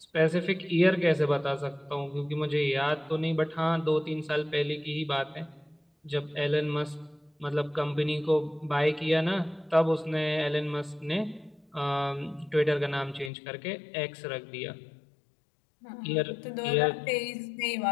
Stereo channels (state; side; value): drops out; right; at 13.3 s